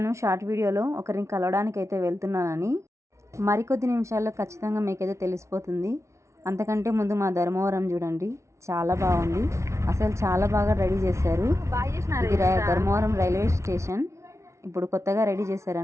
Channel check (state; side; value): late; left; 0.14 ms